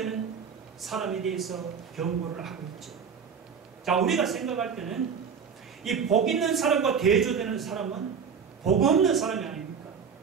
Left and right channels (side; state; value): left; quieter; 6.5 dB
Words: 사람에 대해서 경고를 하고 있죠. 자, 우리가 생각할 때는 이 복 있는 사람과 대조되는 사람은 복 없는 사람이 아닙니까?